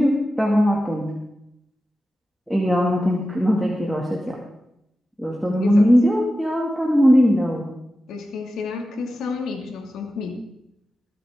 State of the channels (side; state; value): both; normal; correlation 0.93